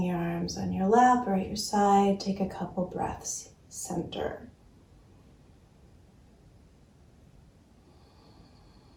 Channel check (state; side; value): identical; both; correlation 1.00